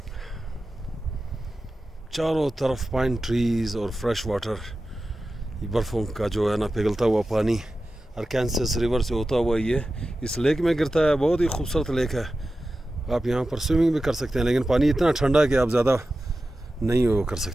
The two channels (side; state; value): both; normal; correlation 0.93